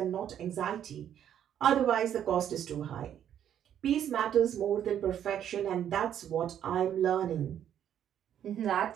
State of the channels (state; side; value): quieter; left; 9.9 dB